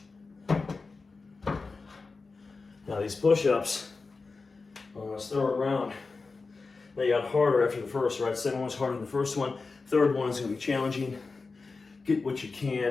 Now these push-ups on this third round, they got harder after the first, right? Second one's harder than the first one. Third one is gonna be challenging. Get what you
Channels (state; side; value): quieter; right; 4.1 dB